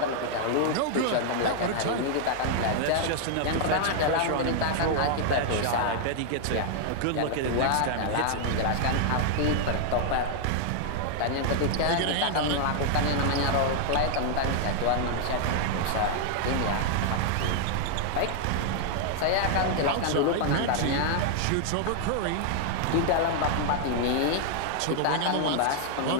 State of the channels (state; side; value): different; both; correlation 0.00